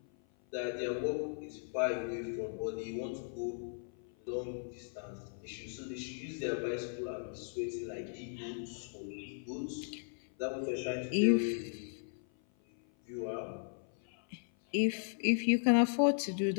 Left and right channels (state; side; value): silent; right; 53 dB below the other